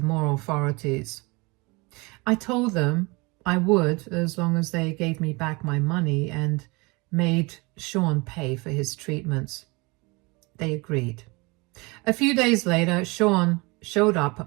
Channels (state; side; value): quieter; left; 26.2 dB